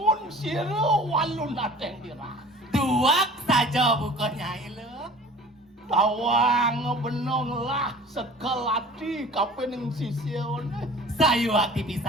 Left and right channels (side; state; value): both; normal; correlation 0.44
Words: sira walun nateng dirah. Duak saja bukan nyai lo. Tawang benong lah sekelati kapening sisya ne. Sayu hati